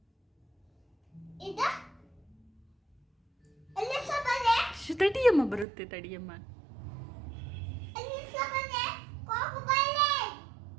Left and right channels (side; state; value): left; drops out; at 5.7 s